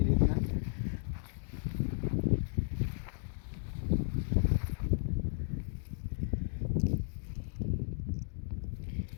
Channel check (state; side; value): silent; right; digital silence